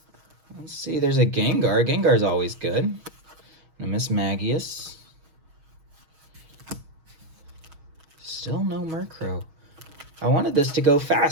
Let's see, there's a Gengar. Gengar's always good. And a Mismagius. Still no Murkrow. I wanted this to go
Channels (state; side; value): late; left; 6.3 ms